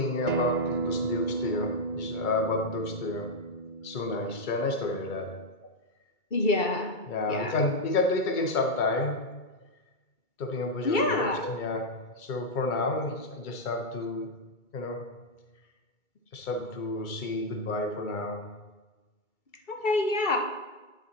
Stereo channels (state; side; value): late; right; 2.3 ms